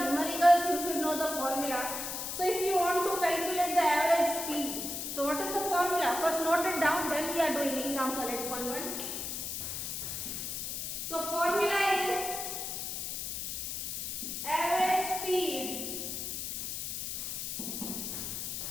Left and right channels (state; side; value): noise; left; hiss, 4 dB below the sound